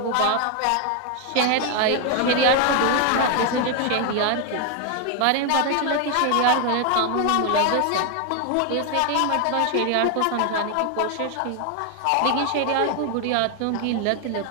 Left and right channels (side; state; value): both; different; correlation 0.01